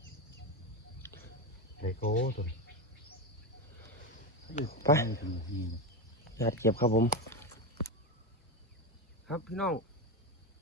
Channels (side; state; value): both; normal; correlation 0.14